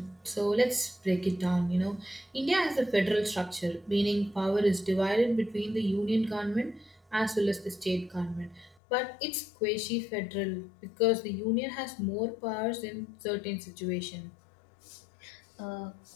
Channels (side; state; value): right; drops out; at 8.8 s